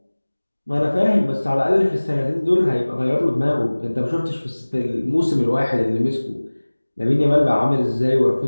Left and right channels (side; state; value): both; inverted; correlation -1.00